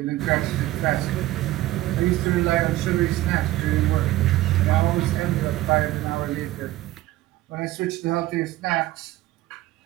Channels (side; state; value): left; quieter; 16.3 dB